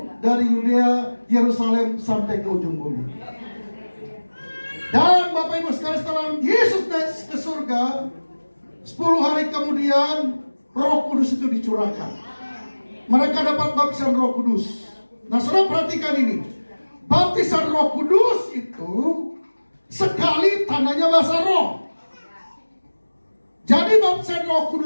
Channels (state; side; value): inverted; both; correlation -1.00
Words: dari Yudea, Yerusalem sampai ke ujung bumi. Dan Bapak Ibu sekalian, setelah Yesus naik ke surga, 10 hari kemudian Roh Kudus itu dicurahkan. Mereka dapat baptisan Roh Kudus. Nah, saudara perhatikan ini. Baptisan Roh Kudus itu sekali tandanya bahasa roh. Jadi baptisan Roh